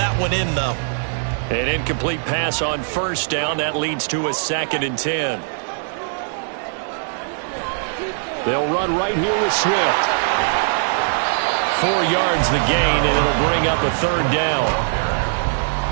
one in, though. An incomplete pass on first down. That leads to a 2nd and 10. They'll run right here with Swift. 4 yards the gain, and it'll bring up a 3rd down.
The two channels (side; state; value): left; silent; digital silence